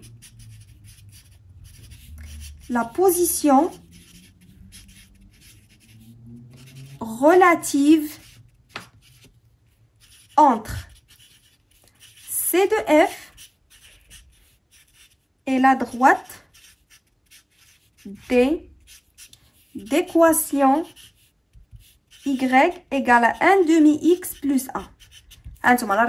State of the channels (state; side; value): identical; both; correlation 1.00